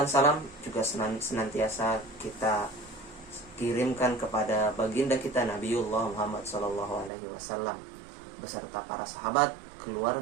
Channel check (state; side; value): drops out; left; at 7.1 s